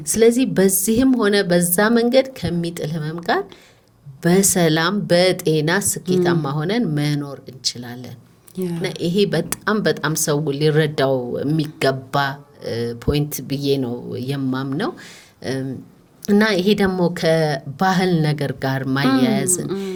ስለዚህ በዚህም ሆነ በዛ መንገድ ከሚጥል ህመም ጋር በሰላም በጤና ስኬታማ ሆነን መኖር እንችላለን። እና ይሄ በጣም ሰው ሊረዳው የሚገባ ፖይንት ብዬ ነው የማምነው። እና ይሄ ደግሞ ከባህል ነገር ጋር ማያያዝን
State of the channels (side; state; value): both; identical; correlation 1.00